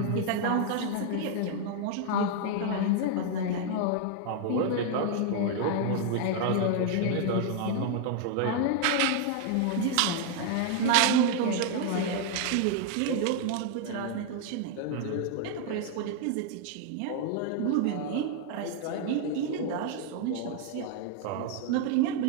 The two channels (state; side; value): different; both; correlation 0.00